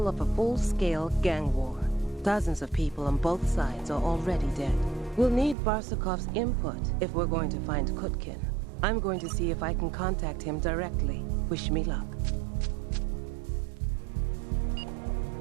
of a full-scale gang war. Dozens of people on both sides are already dead. We'll need Barsukov's input if we're going to find Kutkin. I'm going to see if I can contact him directly. Wish me luck.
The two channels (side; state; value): left; drops out; at 5.6 s